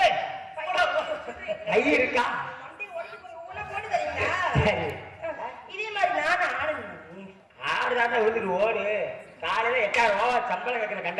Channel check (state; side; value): identical; both; correlation 1.00